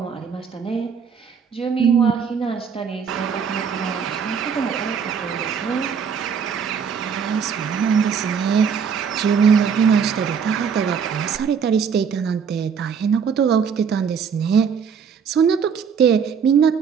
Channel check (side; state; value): left; quieter; 6.7 dB